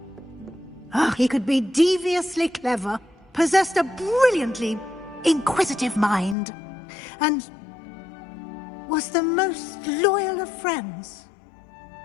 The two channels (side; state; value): right; drops out; at 6.4 s